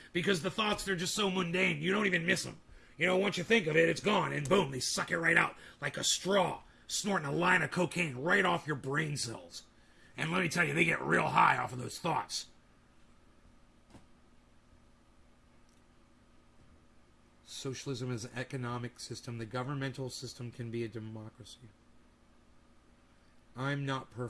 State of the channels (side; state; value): both; identical; correlation 1.00